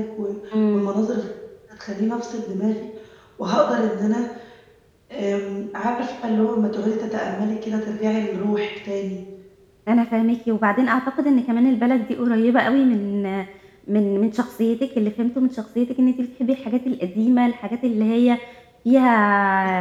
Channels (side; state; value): both; identical; correlation 1.00